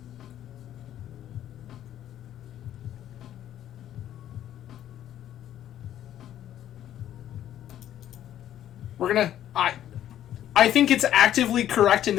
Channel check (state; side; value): quieter; right; 11.5 dB